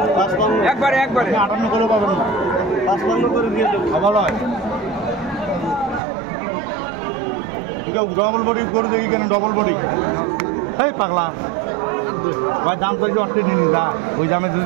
একবারে 58 করে পাবেন না, 55 করে দিয়ে দেব। ভালো হয়। ডবল বডি করে দেখি কেন? ডবল বডি এই পাগলা ভাই, দাম তো অর্থে নিনি যা, ওই দামে যদি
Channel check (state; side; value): drops out; left; at 6.0 s